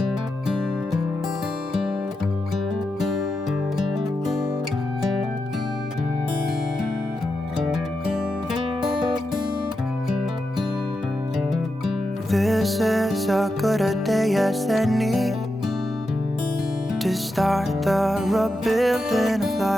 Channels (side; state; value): both; normal; correlation 0.87